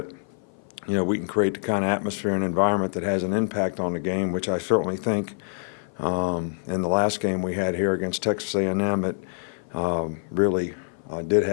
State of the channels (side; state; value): right; silent; 56 dB below the other